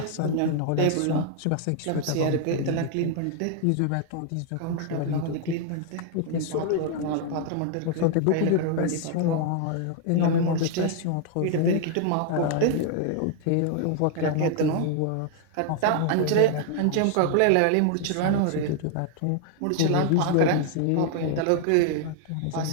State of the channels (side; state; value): both; different; correlation 0.00